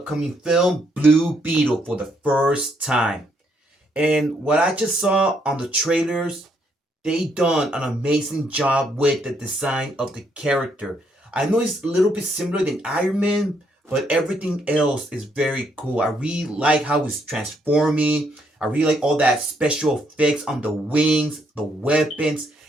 film Blue Beetle for the first time. And what I just saw on the trailers, they done an amazing job with the design of the character. I know it's a little bit similar than Iron Man, but everything else is very cool. I really like how it's transforming. I really like all that special effects on the wings, the weapons,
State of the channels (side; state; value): both; normal; correlation 0.73